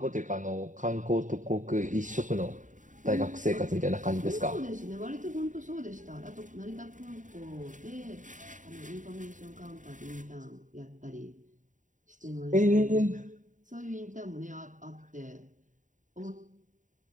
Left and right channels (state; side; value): late; left; 0.37 ms